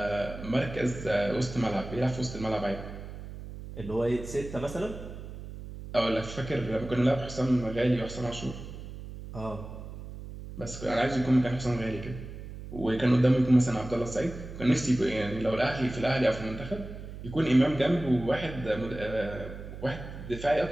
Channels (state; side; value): noise; right; hum, 11 dB below the sound